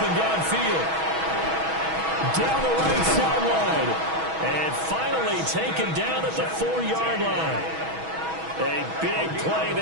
downfield. Down the right sideline. And finally taken down at the 4-yard line. A big play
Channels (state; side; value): late; left; 6.2 ms